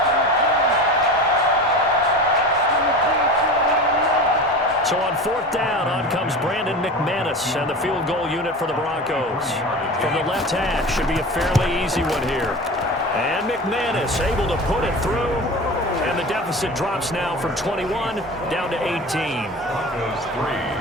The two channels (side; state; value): both; normal; correlation 0.32